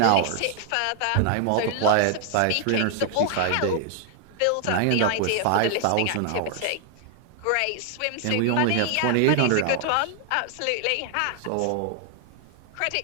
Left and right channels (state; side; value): different; both; correlation 0.00